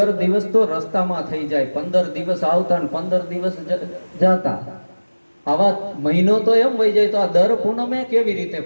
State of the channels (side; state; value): both; inverted; correlation -1.00